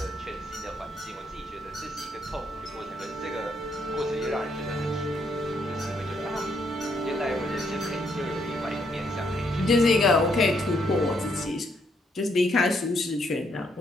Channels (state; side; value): normal; both; correlation 0.74